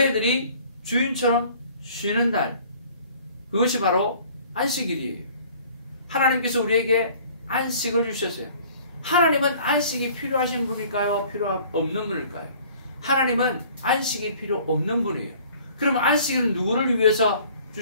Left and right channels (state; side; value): inverted; both; correlation -0.52